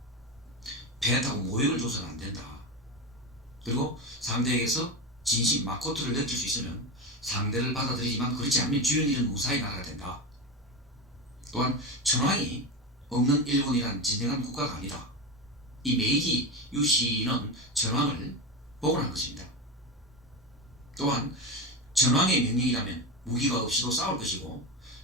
배타고 모욕을 줘서는 안 된다. 그리고 상대에게서 진심 마코토를 느낄 수 있으면 상대를 받아들이지만 그렇지 않으면 주연 일은 무사히 나가야 된다. 또한 천황이 없는 일본이란 진정한 국가가 아니다. 이 메이지 유신은 천황을 복원한 것입니다. 또한 천황의 명령이라면 무기가 없이도 싸울 것이고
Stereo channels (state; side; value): normal; both; correlation 0.19